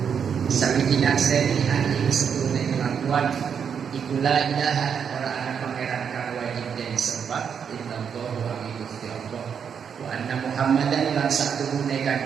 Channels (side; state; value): left; quieter; 7.2 dB